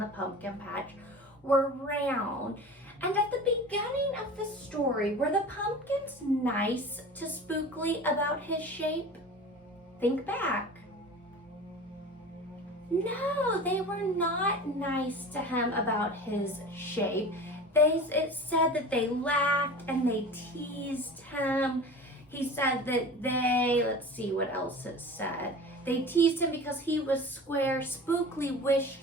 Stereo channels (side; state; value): both; normal; correlation 0.36